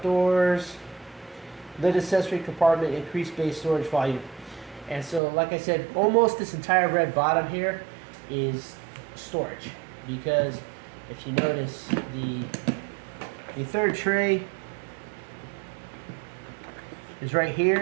lid accessory compartment, increased base storage volume. And so, like I said, almost this entire red bottom here is storage, because if you notice, the third tray is right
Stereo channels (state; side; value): drops out; left; at 5.2 s